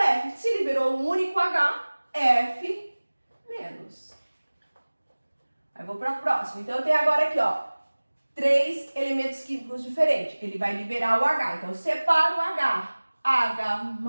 Se liberou um único H, F menos. Aí, vou para a próxima. Então, eu tenho agora aqui, ó, 3 elementos químicos diferentes. Ele vai liberar o H. Então, eu separo o H. H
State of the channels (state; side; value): inverted; both; correlation -1.00